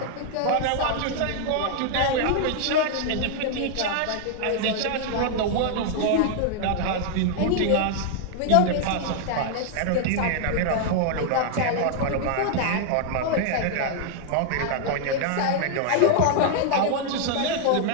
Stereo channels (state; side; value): different; both; correlation -0.01